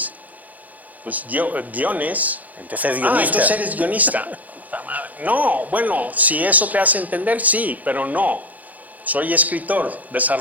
Pues guiones. Entonces es guionista. Entonces eres guionista. No, bueno, si eso te hace entender, sí, pero no. Soy escritor,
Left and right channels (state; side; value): late; left; 0.079 ms